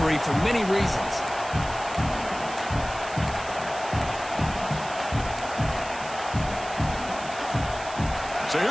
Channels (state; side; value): noise; right; hiss, 15 dB below the sound